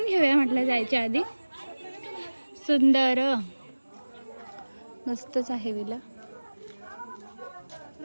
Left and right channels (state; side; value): inverted; both; correlation -1.00